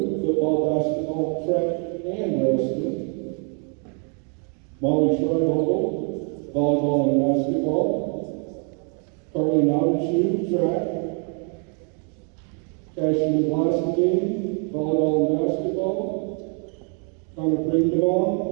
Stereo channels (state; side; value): quieter; left; 39.8 dB